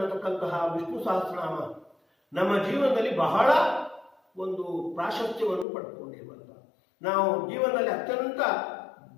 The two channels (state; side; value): drops out; right; at 5.7 s